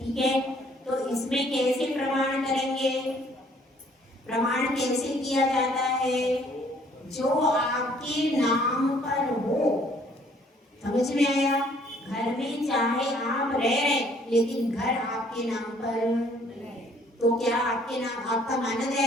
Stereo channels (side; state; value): both; normal; correlation 0.61